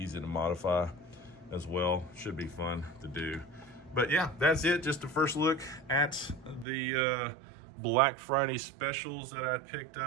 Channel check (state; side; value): drops out; left; at 6.7 s